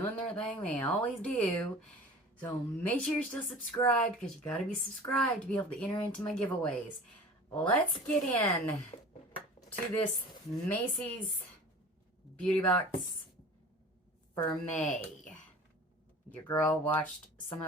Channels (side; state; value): both; normal; correlation 0.40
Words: their thing. They always do. So make sure you're still subscribed because you got to be subscribed to be able to enter into my giveaways. Let's get in to this Macy's beauty box for May. Your girl watched some